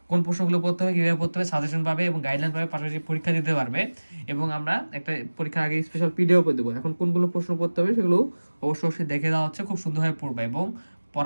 কোন প্রশ্নগুলো পড়তে হবে, কীভাবে পড়তে হবে, সাজেশন পাবে এবং গাইডলাইন পাবে, পাশাপাশি পরীক্ষা দিতে পারবে। এবং আমরা একটা পরীক্ষার আগে স্পেশাল পিডিএফ দেবো। এখন কোনগুলো প্রশ্ন পড়তে হবে সেগুলো অবশ্যই দেখে দেওয়া হচ্ছে, খুব সুন্দরভাবে পড়বে এবং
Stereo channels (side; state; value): both; inverted; correlation -1.00